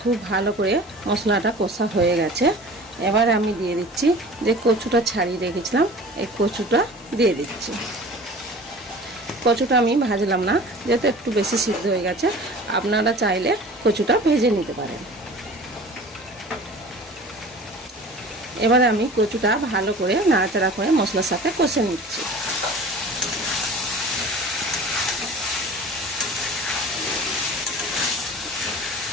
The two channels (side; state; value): both; normal; correlation 0.41